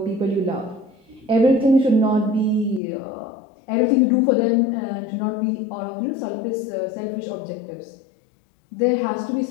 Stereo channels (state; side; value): drops out; right; at 2.8 s